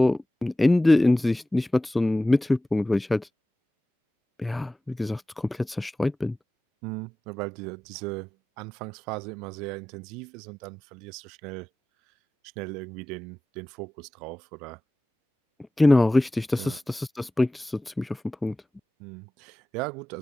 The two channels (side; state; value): both; normal; correlation 0.95